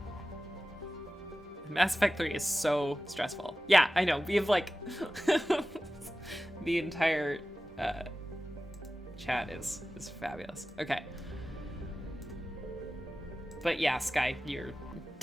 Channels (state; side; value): normal; both; correlation 0.95